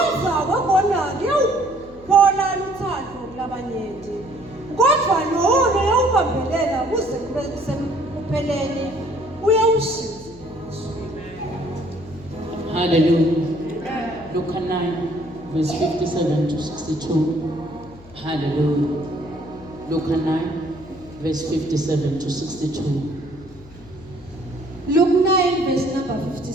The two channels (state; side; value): noise; left; hum, 21 dB below the sound